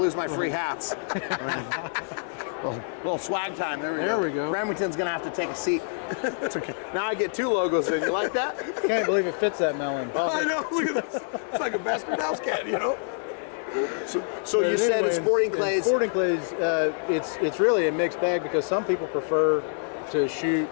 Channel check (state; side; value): silent; right; 61 dB below the other